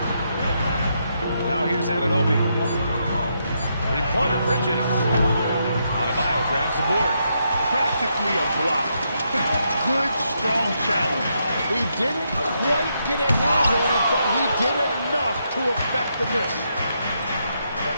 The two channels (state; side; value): inverted; both; correlation -0.79